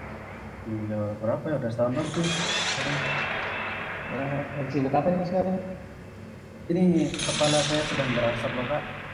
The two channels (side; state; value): both; identical; correlation 1.00